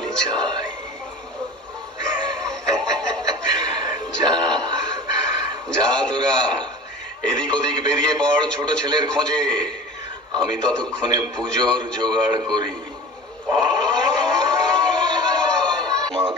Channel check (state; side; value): normal; both; correlation 0.37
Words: চাই। যা যা তোরা এদিক ওদিক বেরিয়ে পড় ছোট ছেলের খোঁজে। আমি ততক্ষণে পুজোর জোগাড় করি।